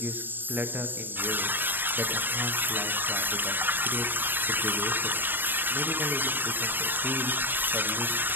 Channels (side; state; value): left; late; 0.093 ms